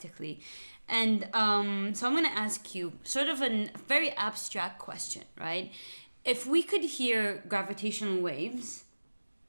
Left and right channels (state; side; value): inverted; both; correlation -1.00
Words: And so I'm going to ask you sort of a very abstract question, right? If we could hear gravitational waves,